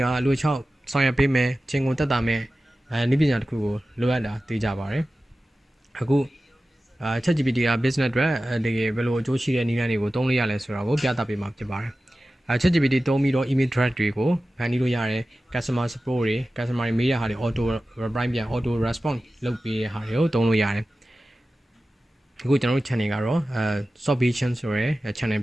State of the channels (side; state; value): both; normal; correlation 0.95